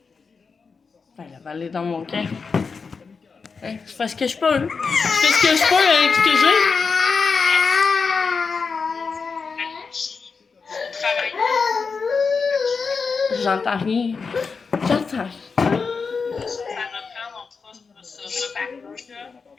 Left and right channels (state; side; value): quieter; right; 5.0 dB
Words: Ben, la balle est dans mon camp. Hein, je fais ce que je peux. Je fais ce que je peux avec ce que j'ai. J'entends rien. J'entends rien. Ça reprend, on fera ce repas-là.